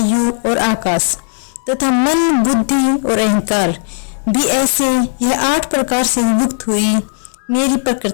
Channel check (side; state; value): right; silent; digital silence